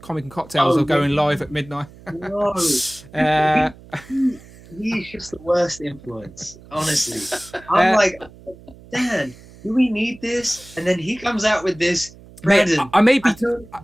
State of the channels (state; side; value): noise; right; hum, 21 dB below the sound